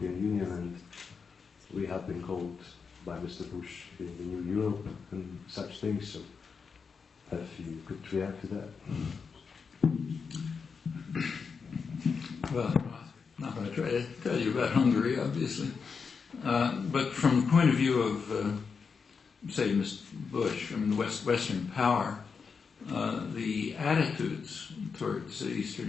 Union, and we have been called by Mr. Bush being the new Europe and such things. So, if you could react to that. Well, I'm not going to try to tell you about Hungary, obviously. But from the point of view of, say, Mr. Bush, I mean, the Western power, the attitudes towards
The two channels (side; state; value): right; quieter; 5.5 dB